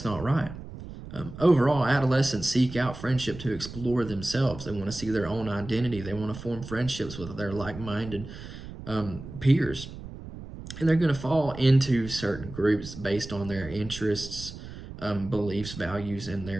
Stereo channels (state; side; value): noise; right; rumble, 12 dB below the sound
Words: not right. Overall, adolescents seek out friendship to explore themselves. They want to see their own identity. They want to form friendships with their like-minded peers. And they're going to fall into certain groups based on their interests, beliefs, values, and